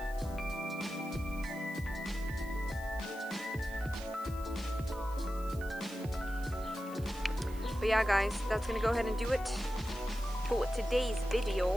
But yeah guys, that's gonna go ahead and do it for today's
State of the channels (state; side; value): noise; right; hiss, 21 dB below the sound